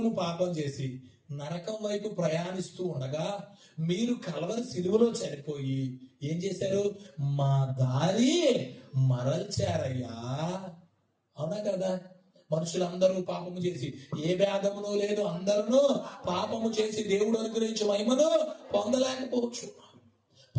పాపం చేసి నరకం వైపు ప్రయాణిస్తూ ఉండగా మీరు కల్వరి సిలువలో చనిపోయి ఏం చేశారు? మా దారి మరల్చారయ్యా. అవునా కదా? మనుషులందరూ పాపము చేసి ఏ భేదమును లేదు, అందరూ పాపము చేసి దేవుడు అనుగ్రహించే మహిమను పొందలేకపోవచ్చు.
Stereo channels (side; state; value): both; identical; correlation 1.00